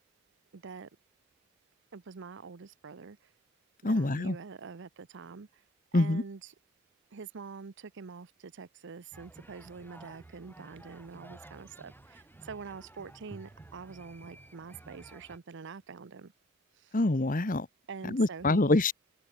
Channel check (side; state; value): both; normal; correlation 0.58